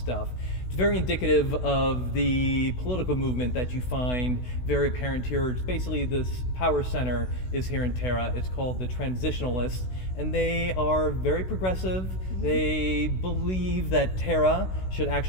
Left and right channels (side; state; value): right; late; 16 ms